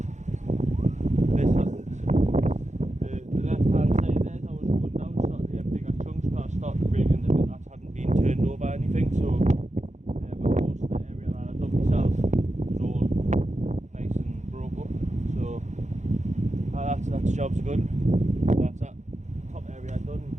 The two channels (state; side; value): late; left; 0.34 ms